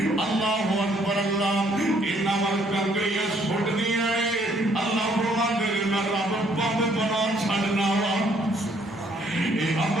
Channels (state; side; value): normal; both; correlation 0.66